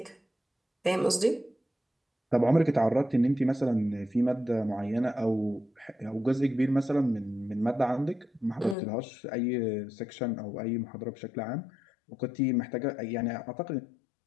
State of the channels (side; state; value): right; drops out; at 8.8 s